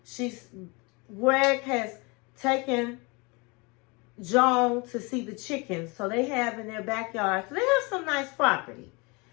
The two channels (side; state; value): right; quieter; 28.3 dB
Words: Greg has taken Joan to see the chickens. So they have in their backyard. So they have some nice property.